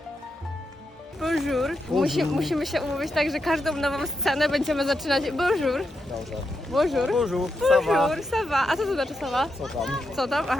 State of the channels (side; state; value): both; normal; correlation 0.85